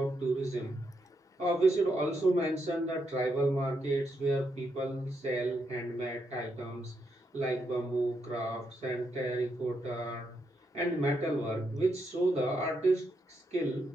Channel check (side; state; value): both; normal; correlation 0.80